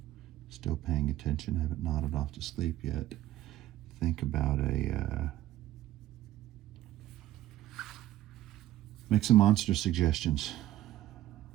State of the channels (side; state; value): left; quieter; 14.2 dB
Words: still paying attention, haven't nodded off to sleep yet, think about make some monster suggestions.